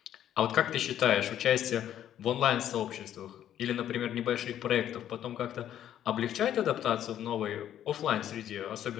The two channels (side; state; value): right; quieter; 10.9 dB